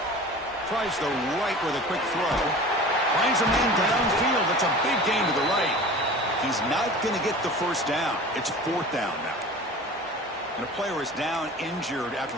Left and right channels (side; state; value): both; normal; correlation 0.39